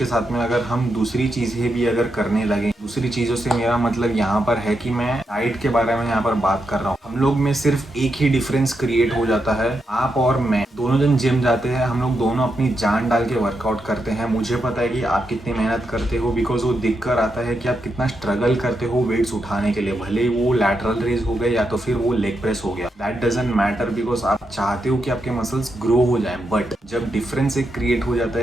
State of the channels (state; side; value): normal; both; correlation 0.84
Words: साथ में अगर हम दूसरी चीजें भी अगर करने लगे, दूसरी चीजों से मेरा मतलब यहाँ पर है कि मैं डाइट के बारे में यहाँ पर बात कर रहा हूँ। हम लोग में सिर्फ एक ही डिफरेंस क्रिएट हो जाता है। आप और मैं दोनों जन जिम जाते हैं, हम लोग दोनों अपनी जान डाल के वर्कआउट करते हैं। मुझे पता है कि आप कितनी मेहनत करते हो बिकॉज वो दिख कर आता है कि आप कितना स्ट्रगल करते हो वेट्स उठाने के लिए। भले वो लैटरल रेज हो गए या तो फिर वो लेग प्रेस हो गया, दैट डजंट मैटर बिकॉज आप चाहते हो कि आपके मसल्स ग्रो हो जाए। बट जब डिफरेंस एक क्रिएट हो जाता